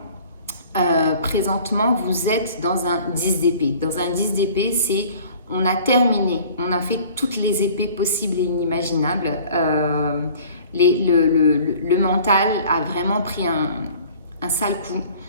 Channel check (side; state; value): both; inverted; correlation -0.49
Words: présentement vous êtes dans un 10 d'épée. Dans un 10 d'épée c'est on a terminé, on a fait toutes les épées possibles et inimaginables. Le mental a vraiment pris un sale coup.